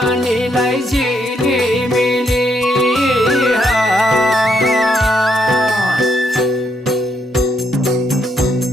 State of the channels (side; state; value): both; normal; correlation 0.76